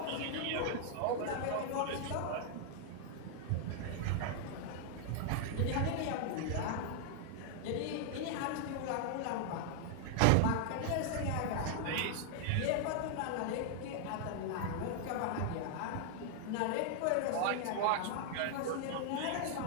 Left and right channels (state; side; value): different; both; correlation 0.00